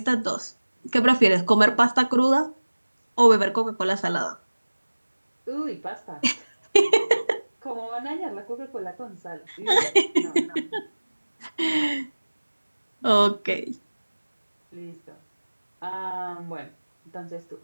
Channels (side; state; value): both; inverted; correlation -1.00